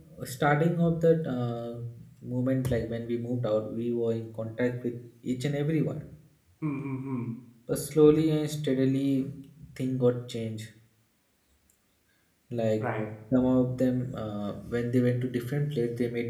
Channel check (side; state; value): both; identical; correlation 1.00